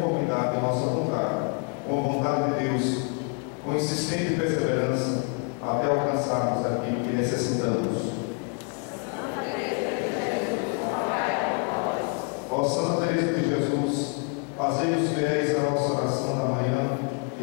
à nossa vontade, com a vontade de Deus, com insistente perseverança, até alcançarmos aquilo que necessitamos. Ó Santa Teresa de Jesus, fazei-nos fiéis à nossa oração da manhã e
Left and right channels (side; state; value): right; quieter; 36.2 dB